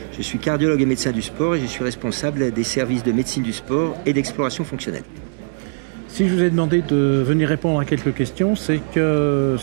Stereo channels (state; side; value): silent; left; digital silence